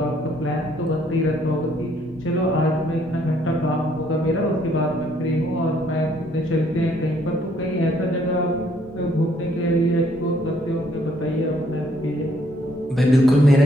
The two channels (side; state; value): both; normal; correlation 0.66